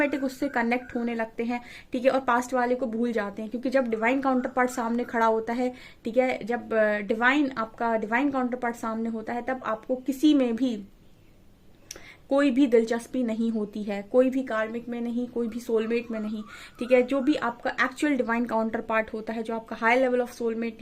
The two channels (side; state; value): both; identical; correlation 1.00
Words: उससे कनेक्ट होने लगते हैं, ठीक है, और पास्ट वाले को भूल जाते हैं। क्योंकि जब डिवाइन काउंटर पार्ट सामने खड़ा होता है, ठीक है, जब आपका डिवाइन काउंटर पार्ट सामने होता है, तब आपको किसी में भी कोई भी दिलचस्पी नहीं होती है, कोई भी कार्मिक में नहीं, कोई भी सोलमेट में नहीं, ठीक है। जो भी आपका एक्चुअल डिवाइन काउंटर पार्ट होता है, जो आपका हाई लेवल ऑफ सोलमेट